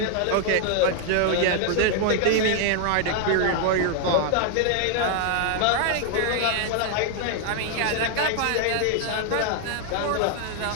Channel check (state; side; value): different; both; correlation 0.00